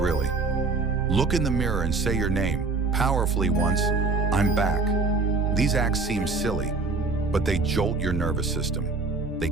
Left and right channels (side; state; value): left; quieter; 4.1 dB